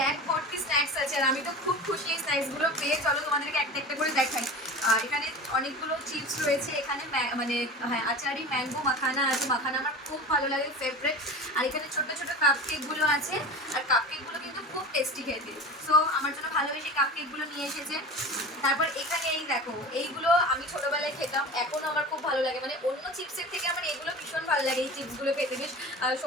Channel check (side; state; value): both; normal; correlation 0.33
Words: ভর্তি স্ন্যাক্স আছে আর আমি তো খুব খুশি এই স্ন্যাক্সগুলো পেয়ে। চলো তোমাদেরকে একটা একটা করে দেখাই। এখানে অনেকগুলো চিপস রয়েছে, এখানে মানে হ্যাঁ আচারি ম্যাঙ্গো মাখানা আছে, মাখানা আমার খুব ভালো লাগে, ফেভারিট। আর এখানে ছোট ছোট কাপ কেকগুলো আছে, আর কাপ কেকগুলো কিন্তু খুব টেস্টি খেতে। সো আমার জন্য ভালোবেসে কাপ কেকগুলো নিয়ে এসেছে। তারপর এখানে এই দেখো, এইগুলো আমি ছোটবেলায় খেতাম, এখনও আমার খুব ভালো লাগে, মানে অন্য চিপসের থেকে আমার এগুলো ভীষণ ভালো লাগে। এই চিপসগুলো খেতে বেশ